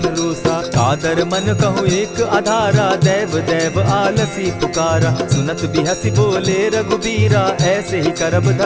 रोसा। कादर मन कहूँ एक आधारा, दैव दैव आलसी पुकारा। सुनत बिहसी बोले रघुबीरा, ऐसे ही करब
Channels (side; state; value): both; identical; correlation 1.00